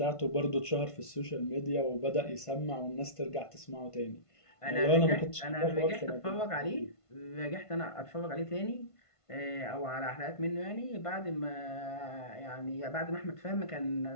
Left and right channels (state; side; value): late; right; 1.5 ms